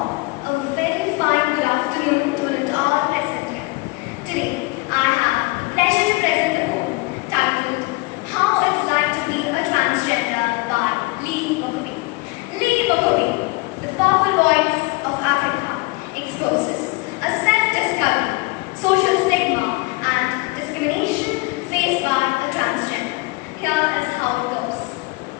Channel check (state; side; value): quieter; right; 25.0 dB